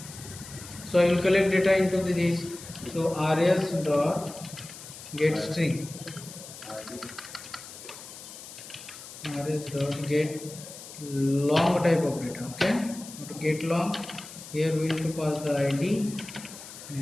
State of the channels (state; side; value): noise; left; hiss, 14 dB below the sound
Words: so I will collect data into this. So rs dot get string, rs dot get long type of data. Okay, to get long, here we will to pass the id